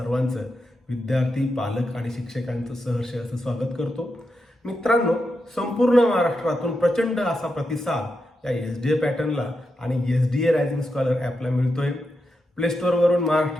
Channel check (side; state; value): both; normal; correlation 0.86